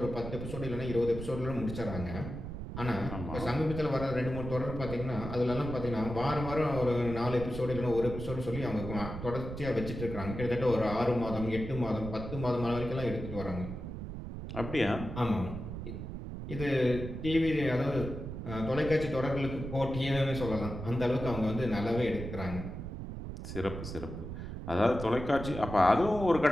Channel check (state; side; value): noise; right; rumble, 7 dB below the sound